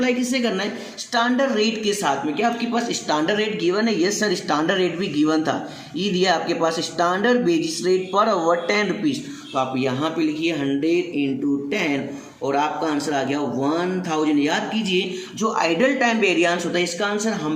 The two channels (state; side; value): identical; both; correlation 1.00